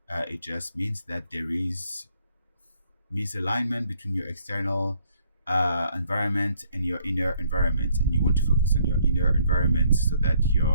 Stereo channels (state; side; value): inverted; both; correlation -0.66